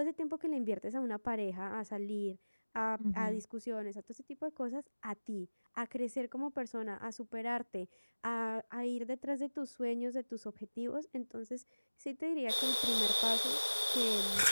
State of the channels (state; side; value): inverted; both; correlation -1.00